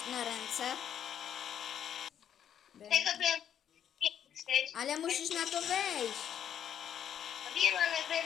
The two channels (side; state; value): right; quieter; 9.4 dB